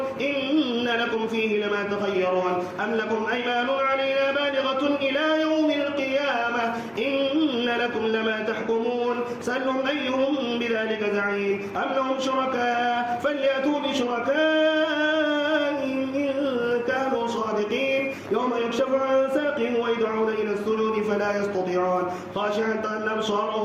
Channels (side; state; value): both; identical; correlation 1.00